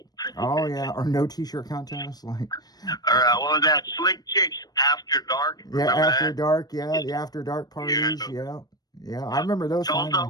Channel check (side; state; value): right; late; 0.19 ms